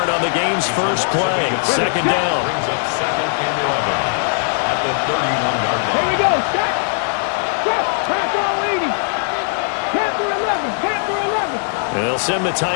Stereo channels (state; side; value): silent; right; 55 dB below the other